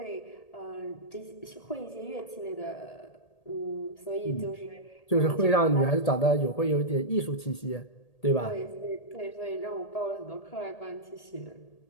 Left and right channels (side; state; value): right; late; 1.8 ms